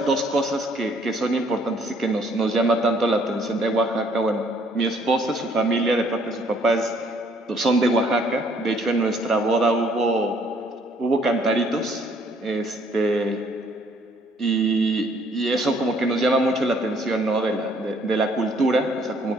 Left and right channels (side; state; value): both; normal; correlation 0.63